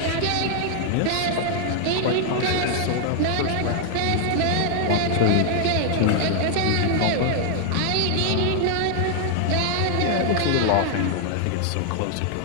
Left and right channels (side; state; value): both; different; correlation 0.00